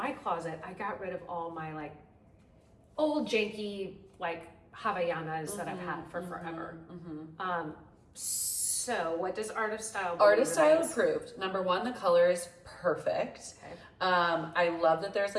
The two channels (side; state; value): both; identical; correlation 1.00